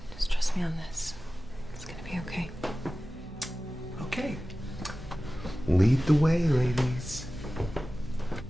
Just trust me on this. It's gonna be okay. Okay. Lead the way, ladies.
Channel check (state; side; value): noise; right; hum, 17 dB below the sound